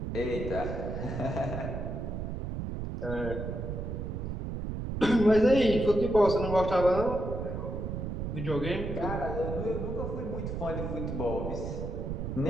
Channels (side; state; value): right; noise; rumble, 4 dB below the sound